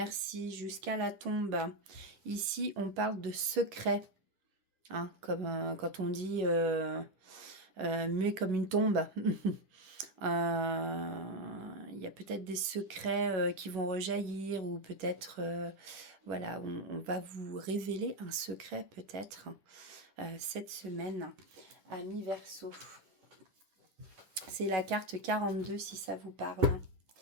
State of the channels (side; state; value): left; late; 10 ms